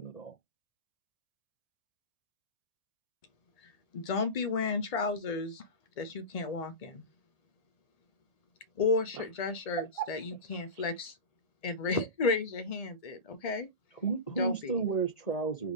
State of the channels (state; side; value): late; right; 1.8 ms